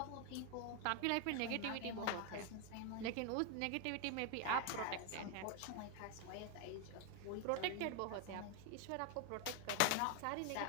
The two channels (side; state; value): both; different; correlation 0.01